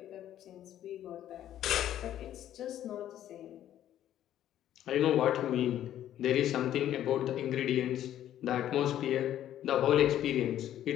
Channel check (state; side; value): quieter; right; 11.7 dB